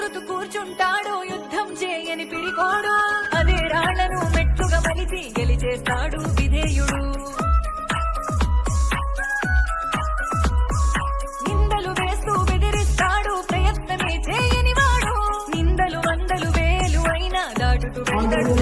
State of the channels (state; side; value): identical; both; correlation 1.00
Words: కూర్చుంటాడు యుద్ధం చేయని పిడికోడు, అదే రాళ్లను మెట్టుగా మలిచి గెలిచేస్తాడు విధేయుడు. నిందలు వేస్తూ బెదిరిస్తాడు ప్రయత్నమే చేయని వాడు, నిందలు వందలు వేలు అయినా దాటుతూ వెళ్తాడు